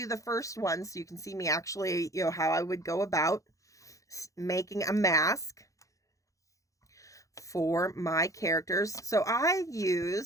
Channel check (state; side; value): late; right; 0.16 ms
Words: the first one so you can see me actually, how I would go about making a mask for my characters. So I